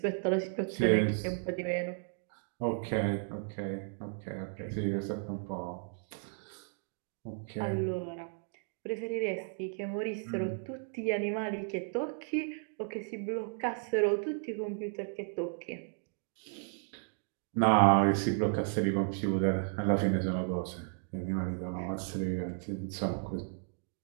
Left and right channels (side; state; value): left; silent; 55 dB below the other